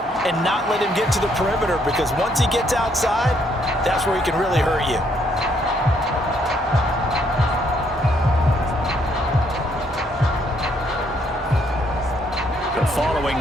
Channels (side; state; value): both; normal; correlation 0.70